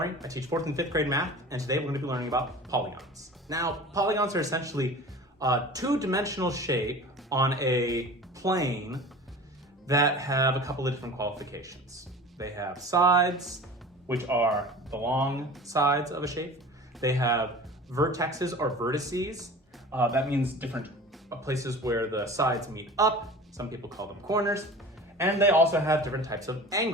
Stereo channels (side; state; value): both; normal; correlation 0.39